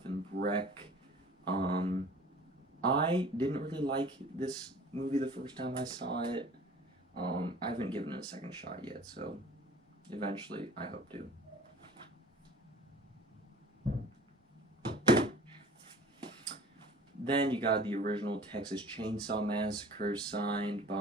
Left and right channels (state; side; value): normal; both; correlation 0.46